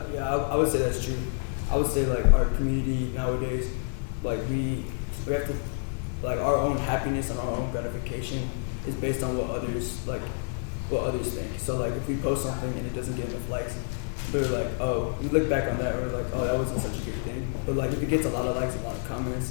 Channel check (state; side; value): silent; right; digital silence